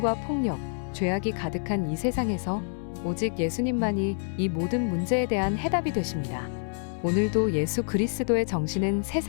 폭력, 죄악이 가득한 이 세상에서 오직 예수님만이 이 모든 문제에 대한 해답이 되십니다. 오늘도 예수 그리스도의 정신은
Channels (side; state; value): right; silent; 60 dB below the other